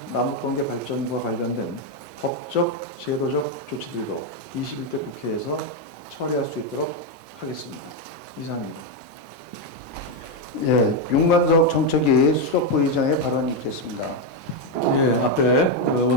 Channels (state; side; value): normal; both; correlation 0.05